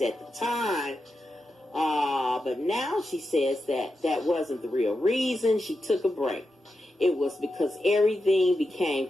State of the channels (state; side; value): normal; both; correlation 0.88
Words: at the time, but now she says that wasn't the real reason she took a break. It was because everything became